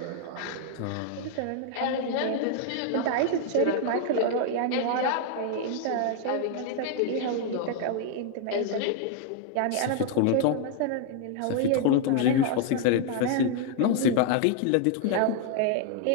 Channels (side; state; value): both; different; correlation 0.00